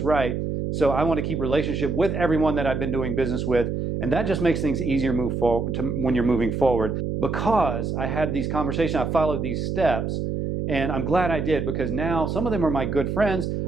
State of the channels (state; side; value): noise; right; hum, 2 dB below the sound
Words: right, so I want to keep relationship with everyone that I've been doing business with, and that just makes things easier move forward when you're moving forward. Because I had these conversations, I followed these steps, and I'm glad I did, because now some of them are my good friends.